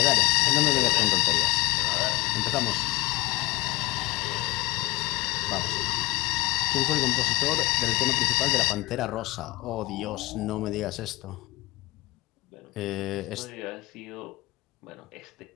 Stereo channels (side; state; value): right; quieter; 21.0 dB